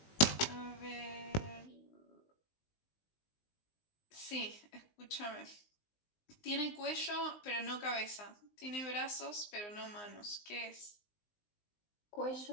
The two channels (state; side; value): late; right; 19 ms